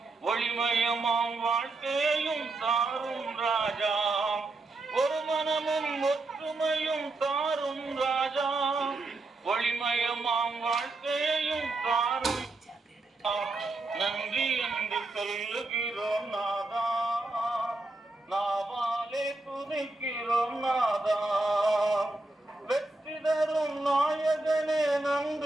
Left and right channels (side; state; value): left; quieter; 3.0 dB